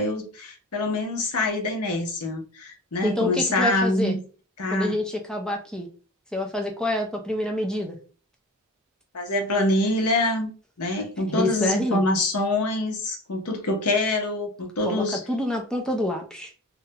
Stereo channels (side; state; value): both; normal; correlation 0.39